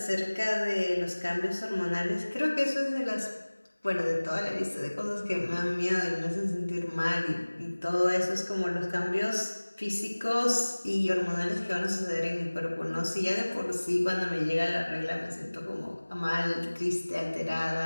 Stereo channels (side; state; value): both; inverted; correlation -1.00